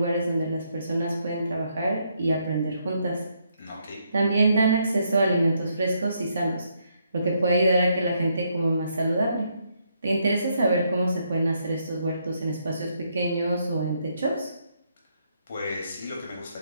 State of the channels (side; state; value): both; inverted; correlation -0.75